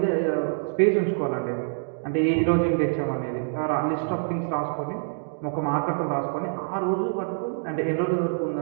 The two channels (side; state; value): left; silent; digital silence